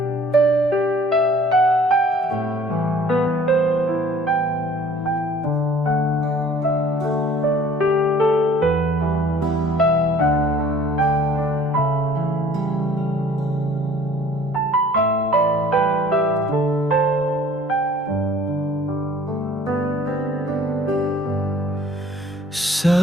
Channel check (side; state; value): both; normal; correlation 0.53